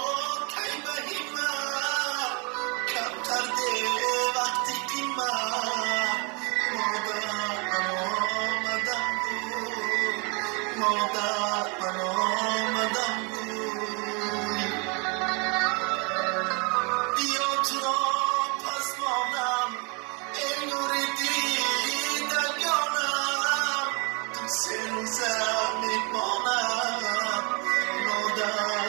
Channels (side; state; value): left; quieter; 32.0 dB